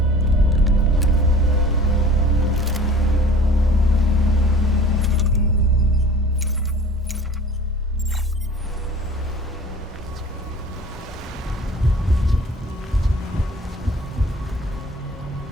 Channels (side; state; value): both; normal; correlation 0.46